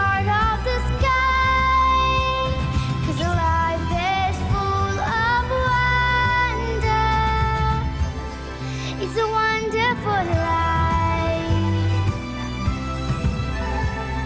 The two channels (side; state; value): both; identical; correlation 1.00